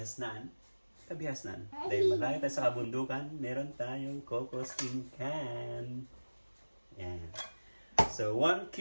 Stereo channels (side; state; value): both; inverted; correlation -1.00